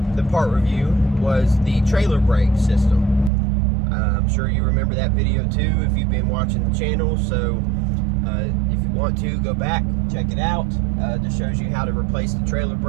the part review was the trailer brake system. I'm sure you remember that video too if you've been watching the channel. So if you want to, go back, check it out. Just shows you how to replace the trailer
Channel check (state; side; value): drops out; left; at 3.3 s